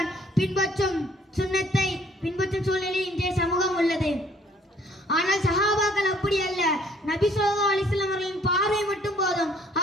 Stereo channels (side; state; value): both; normal; correlation 0.60